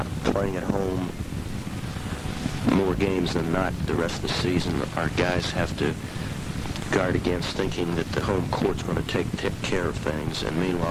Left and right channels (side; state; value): both; identical; correlation 1.00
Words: Playing at home more games than not the rest of the season, our guys have to guard against thinking that the home court's going to take care of things, and